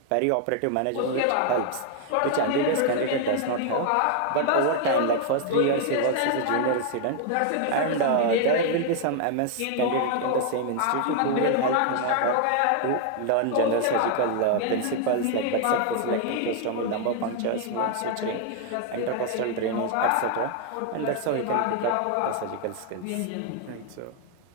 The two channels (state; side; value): different; both; correlation 0.00